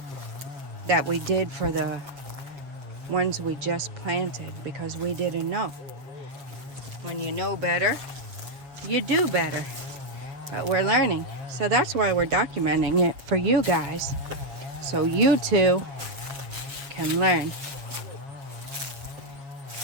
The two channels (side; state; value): left; late; 7.4 ms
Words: did for the ones we just planted because we didn't know. When you know better, you do better. But we're learning. So that's why we're documenting it for you guys. So you too can learn.